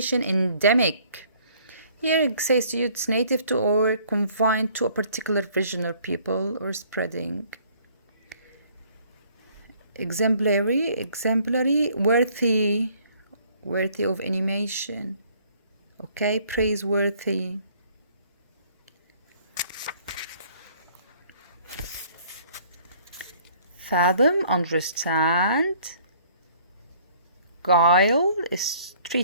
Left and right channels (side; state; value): both; inverted; correlation -0.59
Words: Endemic, here it says to you it's native to or confined to a particular region or people or spreading. Exemplary, worthy of animation. Okay, praiseworthy. Fathom, understand. Guile is